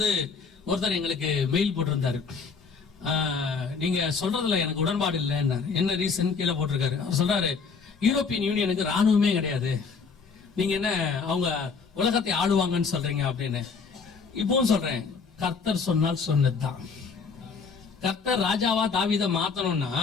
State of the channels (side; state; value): right; quieter; 5.2 dB